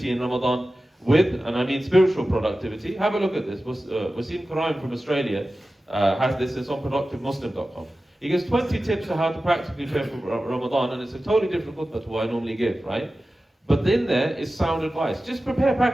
in Ramadan with, and I mean spiritual productivity. Have a look at this. Wasim Karaim from Australia has this. It's on productivemuslim.com. He gives 20 tips on how to practically prepare for Ramadan, and it's a totally different khutbah to what I normally give, right? But in there is sound advice. Just prepare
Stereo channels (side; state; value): both; normal; correlation 0.95